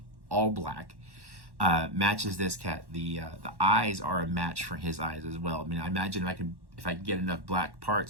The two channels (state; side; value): late; left; 1.1 ms